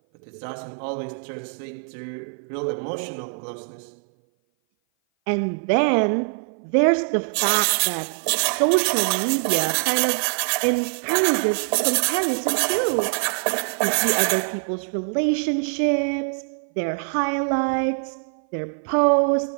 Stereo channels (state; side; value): silent; left; 58 dB below the other